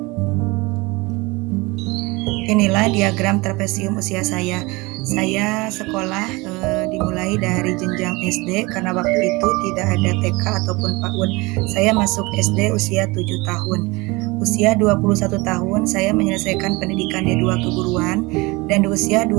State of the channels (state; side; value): quieter; left; 24.1 dB